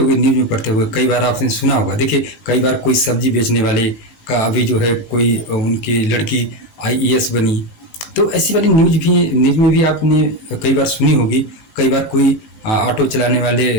न्यूज़ में पढ़ते हुए, कई बार आपने सुना होगा। देखिए कई बार कोई सब्जी बेचने वाले का अभी जो है कोई उनकी लड़की आईएएस बनी, तो ऐसी वाली न्यूज़ में भी आपने कई बार सुनी होगी। कई बार कोई ऑटो चलाने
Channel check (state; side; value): late; right; 19 ms